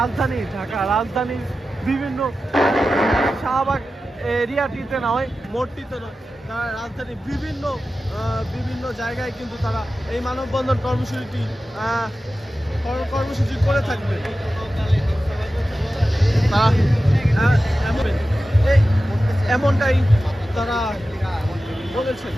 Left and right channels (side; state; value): both; normal; correlation 0.93